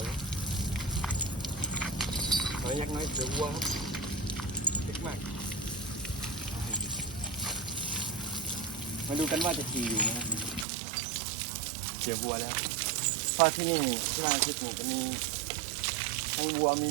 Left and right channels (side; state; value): left; drops out; at 10.7 s